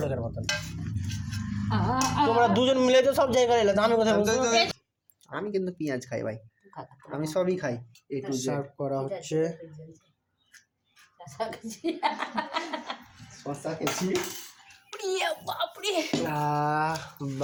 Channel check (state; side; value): identical; both; correlation 1.00